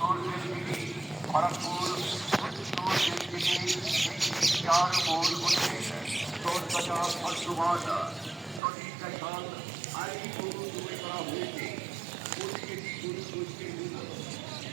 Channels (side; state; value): left; drops out; at 8.6 s